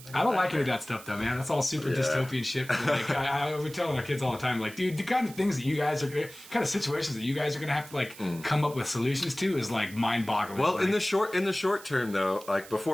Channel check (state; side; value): noise; right; hiss, 18 dB below the sound